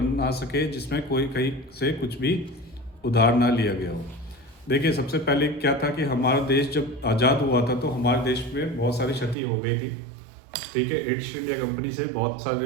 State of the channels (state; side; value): drops out; left; at 9.3 s